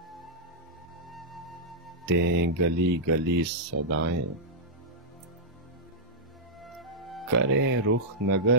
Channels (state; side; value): normal; both; correlation -0.09